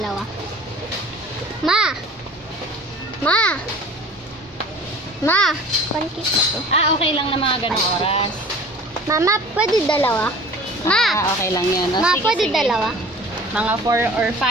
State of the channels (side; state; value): both; normal; correlation 0.44